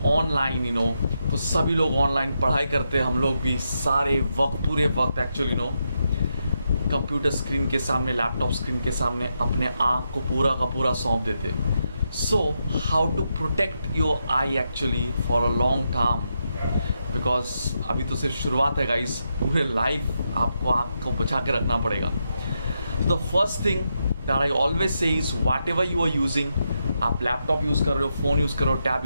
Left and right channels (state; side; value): inverted; both; correlation -0.83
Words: online, तो सभी लोग online पढ़ाई करते हैं। हम लोग भी सारे वक्त, पूरे वक्त एक्चुअली कंप्यूटर स्क्रीन के सामने, लैपटॉप स्क्रीन के सामने अपने आँख को पूरा का पूरा सौंप देते। So how to protect your eye actually for a long term, because अभी तो सिर्फ शुरुआत है गाइस, पूरे लाइफ आपको आँख को बचा के रखना पड़ेगा। The first thing that I always say is whatever you are using, आप लैपटॉप यूज़ कर रहे हो, फ़ोन यूज़ कर रहे हो, टैब